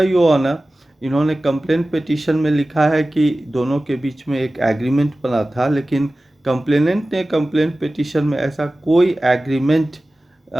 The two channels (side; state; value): both; normal; correlation 0.96